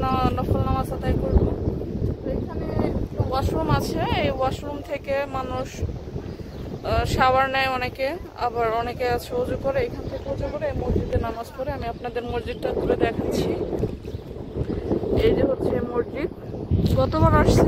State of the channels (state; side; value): identical; both; correlation 1.00